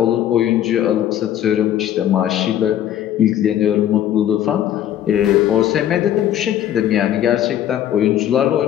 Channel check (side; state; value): right; quieter; 11.3 dB